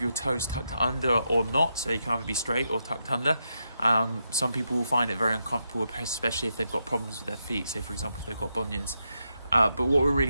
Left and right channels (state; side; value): inverted; both; correlation -0.83